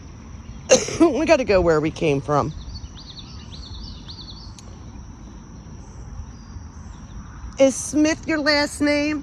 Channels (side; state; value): both; identical; correlation 1.00